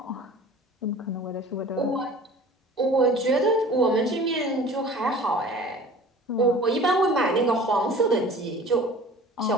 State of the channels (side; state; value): both; normal; correlation 0.44